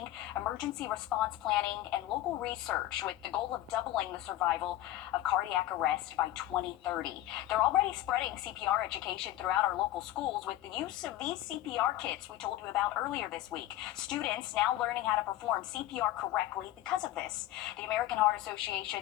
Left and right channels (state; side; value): quieter; right; 14.6 dB